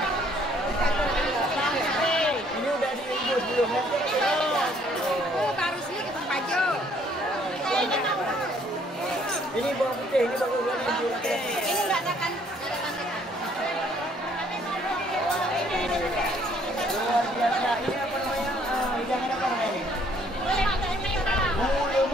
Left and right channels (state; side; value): normal; both; correlation 0.63